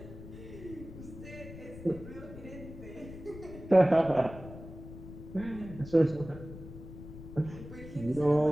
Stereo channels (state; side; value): noise; left; rumble, 13 dB below the sound